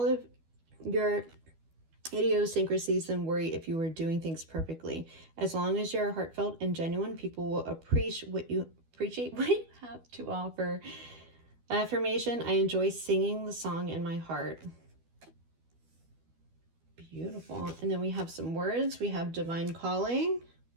of your idiosyncrasies than worry if you were doing things perfectly. As long as you're heartfelt and genuine, people will appreciate what you have to offer. Affirmation, I enjoy singing the song in my heart. Beautiful. And then we have some words. We have divine calling.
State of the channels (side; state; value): left; late; 12 ms